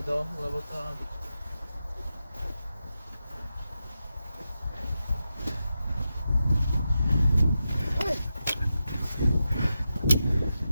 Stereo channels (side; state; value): both; inverted; correlation -0.90